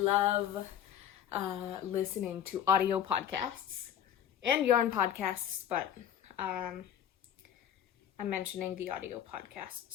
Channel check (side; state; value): right; quieter; 10.0 dB